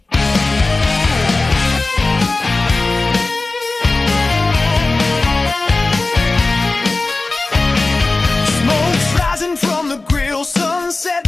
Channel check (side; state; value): right; quieter; 3.3 dB